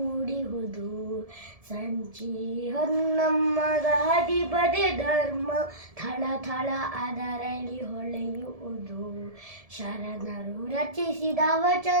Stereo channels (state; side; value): late; left; 1.7 ms